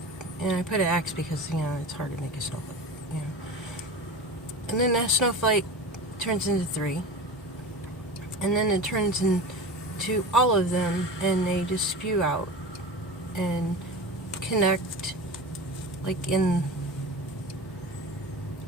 And I put an X because, it's hard to make a snowflake, And then that snowflake turns into 3. And then it turns into all of them, and they just spew out and connect, like in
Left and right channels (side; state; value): both; normal; correlation 0.30